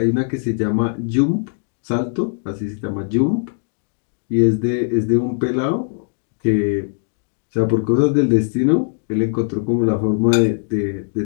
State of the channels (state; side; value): silent; right; 61 dB below the other